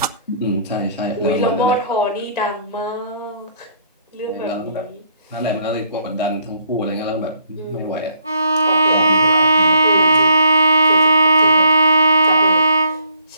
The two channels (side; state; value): both; inverted; correlation -0.65